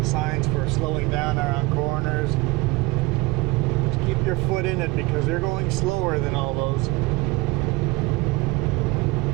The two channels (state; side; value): quieter; left; 22.0 dB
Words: signs for slowing down around corners. Just keep your foot in it because you're going slower than all those.